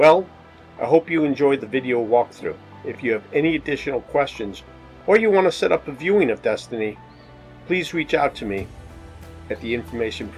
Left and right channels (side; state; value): both; identical; correlation 1.00